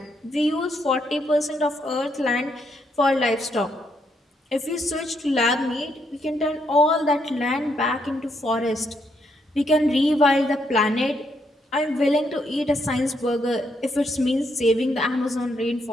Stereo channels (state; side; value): normal; both; correlation 0.76